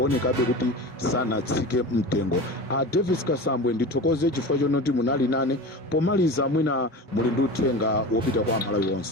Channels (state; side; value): normal; both; correlation 0.31